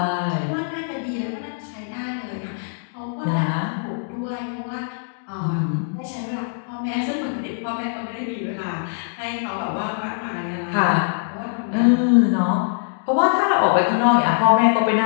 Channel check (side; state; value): right; silent; digital silence